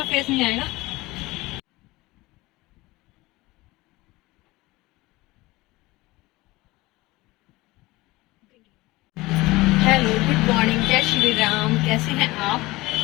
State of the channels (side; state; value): right; quieter; 20.5 dB